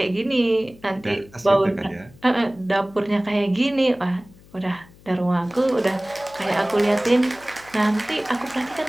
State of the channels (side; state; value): left; noise; hum, 25 dB below the sound